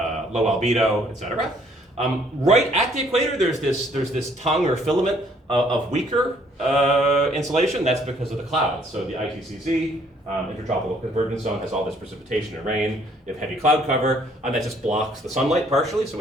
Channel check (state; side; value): normal; both; correlation 0.63